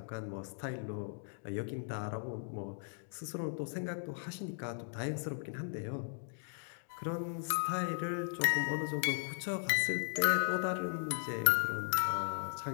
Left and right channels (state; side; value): silent; right; digital silence